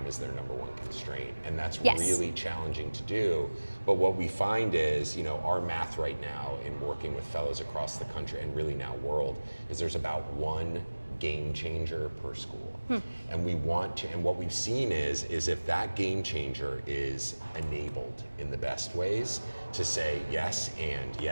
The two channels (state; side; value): inverted; both; correlation -1.00